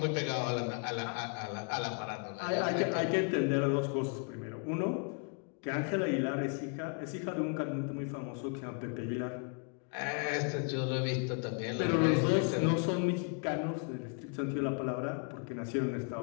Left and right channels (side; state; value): right; quieter; 39.9 dB